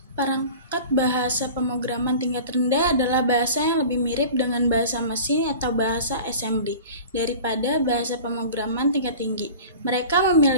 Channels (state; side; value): inverted; both; correlation -0.39